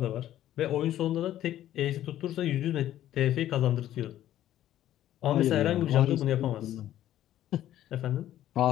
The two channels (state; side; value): quieter; right; 12.6 dB